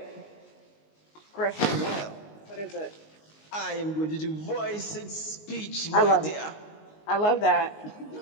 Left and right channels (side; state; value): right; late; 19 ms